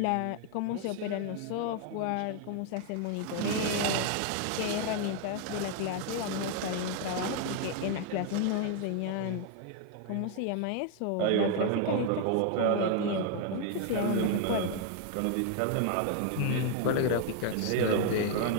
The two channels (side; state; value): both; different; correlation 0.00